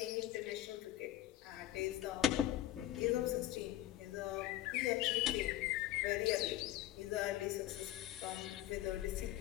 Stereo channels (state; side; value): quieter; right; 14.1 dB